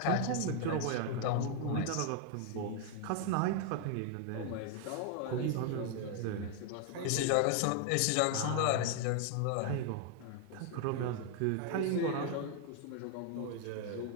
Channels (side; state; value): both; different; correlation 0.00